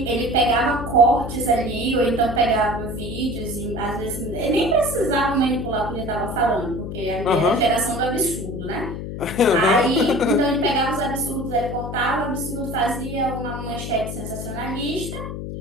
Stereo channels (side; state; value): left; noise; hum, 7 dB below the sound